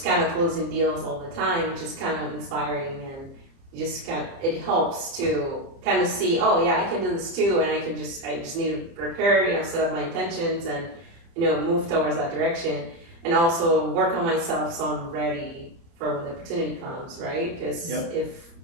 kind of closing deals all the time, which is kind of inspiring, and you just it helps to kind of see, oh yeah, I can do this too, and I just need to prepare, set up my intentions and, move towards that direction, and also work on myself so I'm ready for when the opportunity comes, right? Because if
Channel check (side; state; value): left; late; 30 ms